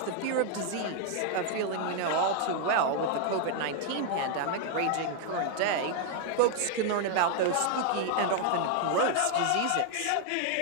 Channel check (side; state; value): both; different; correlation 0.00